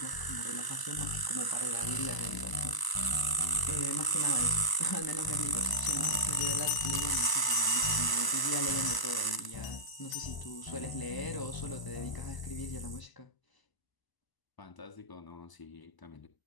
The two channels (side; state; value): right; late; 1.0 ms